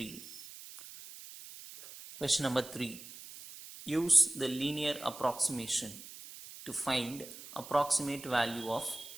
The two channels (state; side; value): noise; right; hiss, 15 dB below the sound